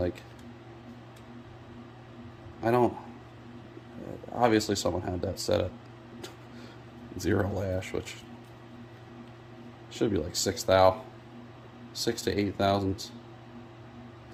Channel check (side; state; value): both; identical; correlation 1.00